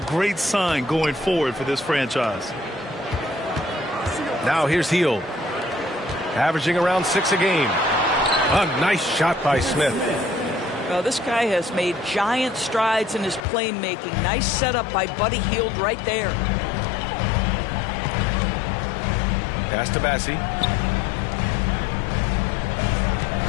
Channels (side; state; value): right; drops out; at 13.5 s